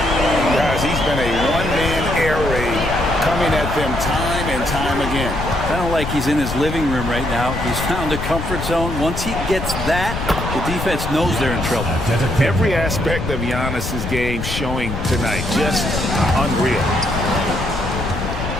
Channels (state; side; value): noise; left; rumble, 5 dB below the sound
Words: Guys, he's been a one-man air raid coming at them time and time again. Kind of like he's in his living room right now. He's found a comfort zone. Once he gets that, the defense knows they're in trouble. Every aspect of Giannis's game showing tonight. Just unreal.